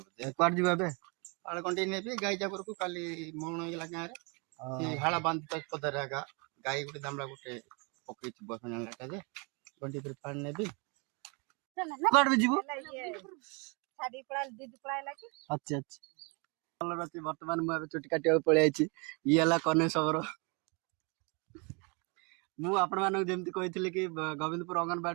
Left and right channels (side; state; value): left; quieter; 32.3 dB